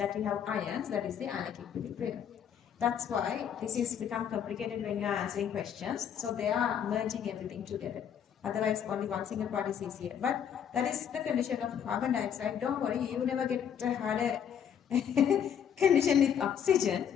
we have ions, that is the ionic equilibrium. That's why this is become complicated when you are answering questions. So they are merging everything together. Otherwise, only one single part is easier. But that is the condition of carbon dioxide. Don't worry, you never get a harder condition with oxygen,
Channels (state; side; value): quieter; right; 8.5 dB